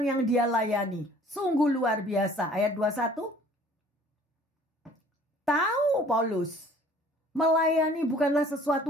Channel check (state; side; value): normal; both; correlation 0.53